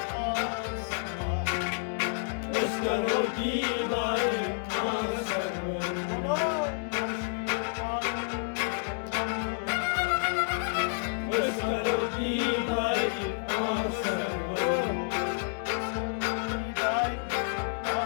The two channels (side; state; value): right; silent; digital silence